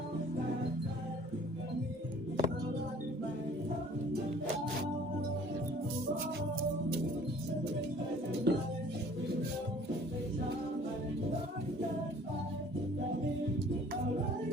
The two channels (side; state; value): both; normal; correlation 0.53